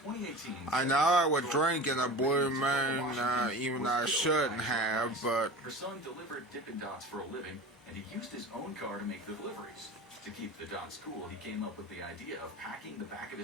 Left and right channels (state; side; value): normal; both; correlation 0.33